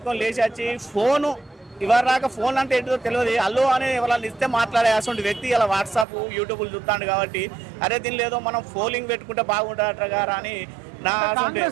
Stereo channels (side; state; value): left; drops out; at 6.1 s